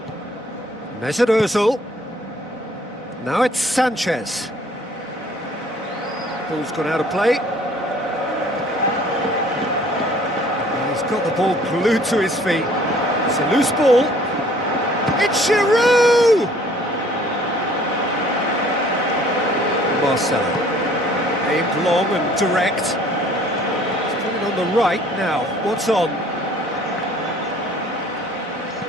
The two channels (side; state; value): both; normal; correlation 0.56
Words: Mesut Ozil. Now it's Sanchez. Ball's gone out of play. He's got the ball glued to his feet. It's a loose ball. It's Giroud! Marcelo. Aimed long and direct. On the right now, what's on?